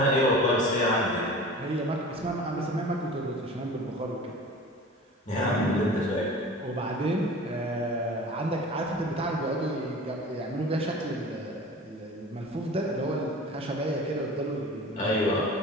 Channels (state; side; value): normal; both; correlation 0.39